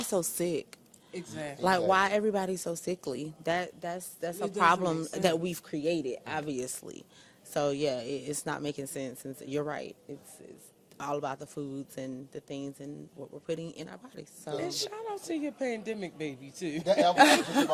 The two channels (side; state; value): both; identical; correlation 1.00